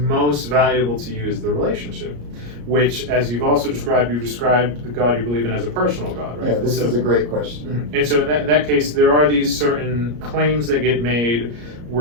valuable to you is the relationship, which, as you've described the God you believe in as a personal God, right? Yeah, this is a great question. And so in that case, there are these certain claims that get made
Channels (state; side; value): late; left; 34 ms